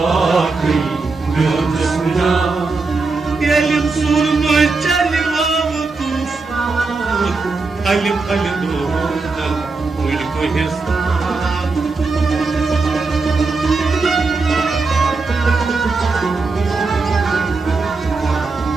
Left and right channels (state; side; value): quieter; left; 4.0 dB